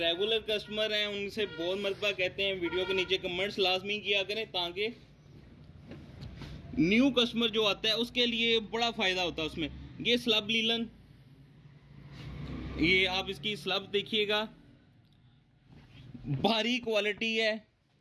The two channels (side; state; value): both; identical; correlation 1.00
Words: कस्टमर हैं उनसे बहुत मरतबा कहते हैं वीडियो के नीचे कमेंट्स लाजमी किया करें, ताकि न्यू कस्टमर जो आता है उसके लिए बड़ा फायदा होता है उसमें। ये स्लब लीलन, ये आप इसकी स्लब देखिएगा, भारी क्वालिटी है।